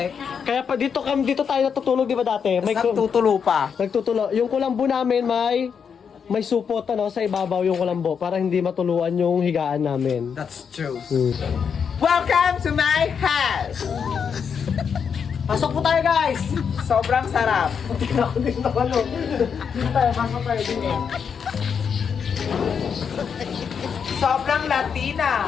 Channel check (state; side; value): quieter; right; 6.8 dB